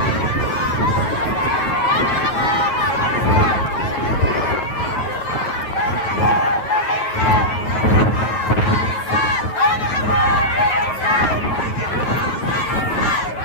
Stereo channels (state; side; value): late; right; 9.2 ms